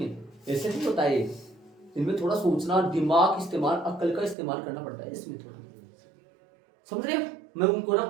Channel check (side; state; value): left; drops out; at 4.4 s